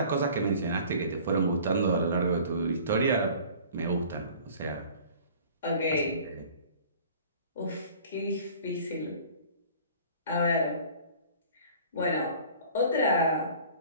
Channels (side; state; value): both; inverted; correlation -0.47